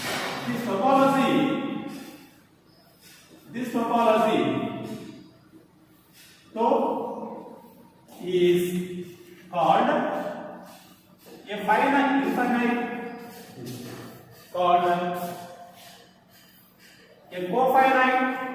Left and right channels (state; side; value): identical; both; correlation 1.00